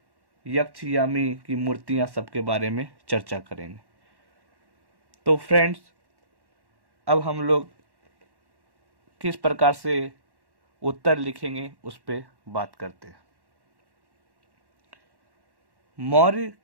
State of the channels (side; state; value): left; late; 1.1 ms